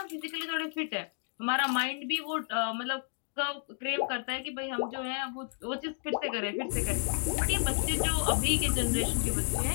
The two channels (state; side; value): silent; right; 57 dB below the other